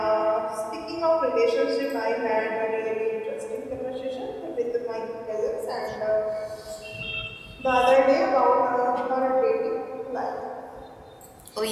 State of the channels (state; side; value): identical; both; correlation 1.00